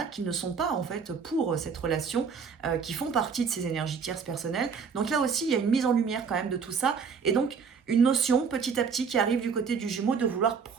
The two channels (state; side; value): quieter; left; 5.9 dB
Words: qui ne sont pas en fait pour cette relation, qui font partie de ces énergies tierces personnelles. Donc là aussi, il y a une mise en lumière quand même de tout ça, et donc une notion petit à petit qui arrive du côté du Jumeau de vouloir